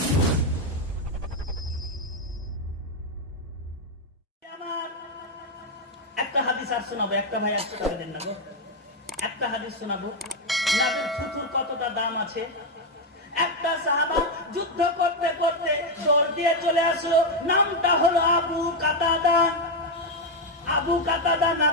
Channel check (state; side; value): normal; both; correlation 0.04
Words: আমার একটা হাদিস আর শোনাবো, একটা ভাই 100 টাকা দেন না গো, একটা হাদিস শোনাবো নবীর থুথুর কতটা দাম আছে। একটা সাহাবা যুদ্ধ করতে করতে দৌড় দিয়ে চলে আসলো, নামটা হলো আবু কাতাদা। আবু কাতাদা